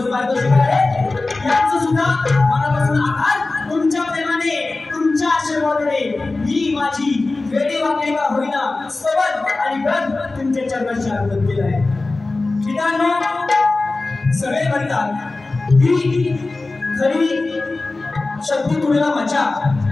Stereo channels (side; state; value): right; quieter; 3.3 dB